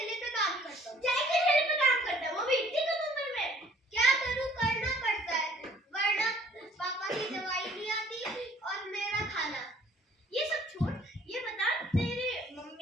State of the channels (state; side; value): normal; both; correlation 0.57